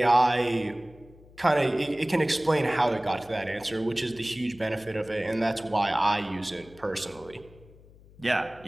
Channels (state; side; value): noise; left; hum, 24 dB below the sound